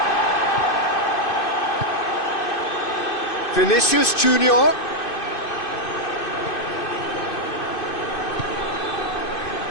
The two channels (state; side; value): late; right; 2.6 ms